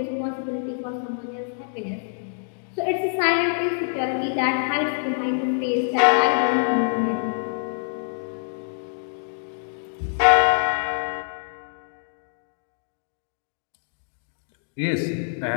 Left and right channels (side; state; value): right; silent; digital silence